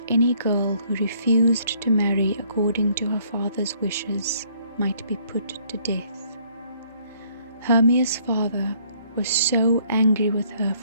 any girl who refused to marry according to her father's wishes might be put to death. Hermia's father was so angry with her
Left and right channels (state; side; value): inverted; both; correlation -0.64